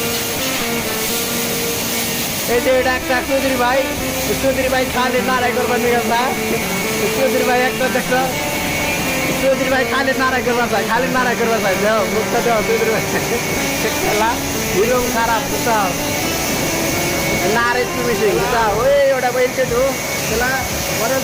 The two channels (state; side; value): identical; both; correlation 1.00